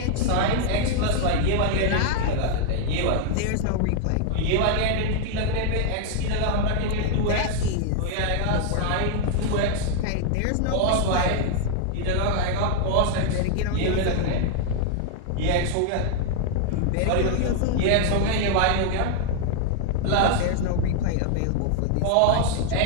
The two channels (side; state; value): both; different; correlation 0.00